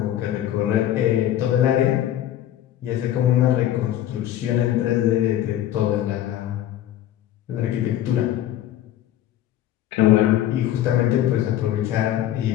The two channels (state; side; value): quieter; right; 12.2 dB